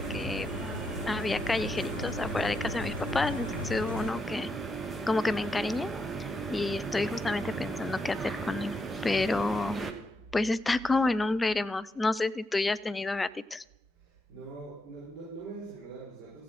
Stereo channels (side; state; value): both; normal; correlation 0.82